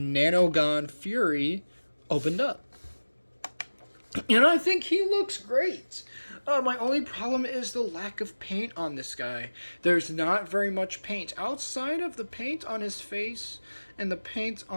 Fury opened up. And I think he looks great. My only problem is the lack of paint on this guy. There's not very much paint. Outside of the paint on his face and the paint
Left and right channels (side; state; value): both; inverted; correlation -1.00